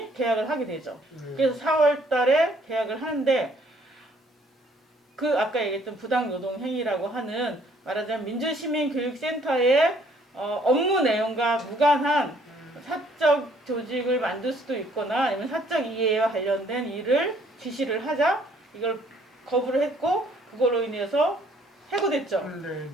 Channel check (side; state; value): both; normal; correlation 0.63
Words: 계약을 하게 되죠. 그래서 4월 달에 계약을 하는데 그 아까 얘기했던 부당노동 행위라고 하는 말하자면 민주시민교육센터의 업무 내용과 무관한 사적 조직을 만들 수도 있거나 아니면 사적 이해와 관련된 일을 지시를 하자 이걸 거부를 했고 그걸로 인해서 해고됐죠. 네네.